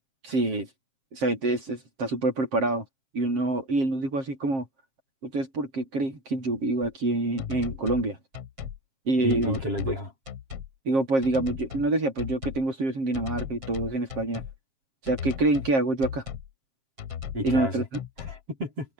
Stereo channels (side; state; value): left; late; 7.5 ms